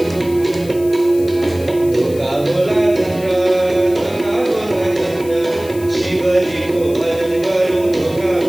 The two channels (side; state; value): left; noise; hiss, 18 dB below the sound